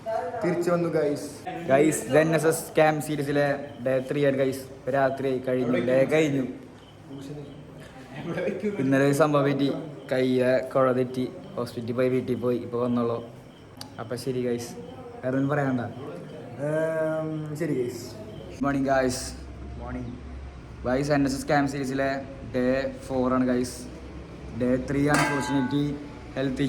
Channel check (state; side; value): identical; both; correlation 1.00